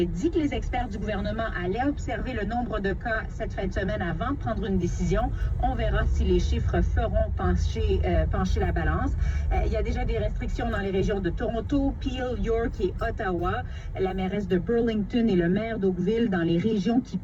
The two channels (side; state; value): both; identical; correlation 1.00